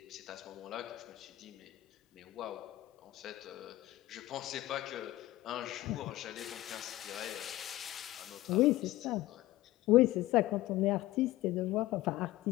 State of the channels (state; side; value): quieter; right; 16.5 dB